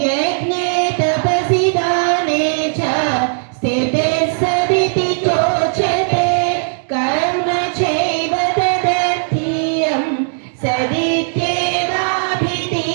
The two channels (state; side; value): silent; left; 64 dB below the other